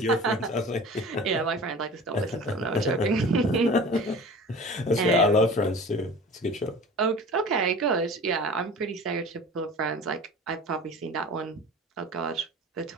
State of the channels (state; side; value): normal; both; correlation 0.39